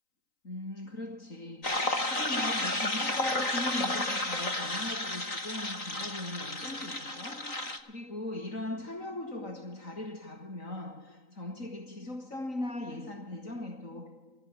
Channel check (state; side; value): late; right; 3.9 ms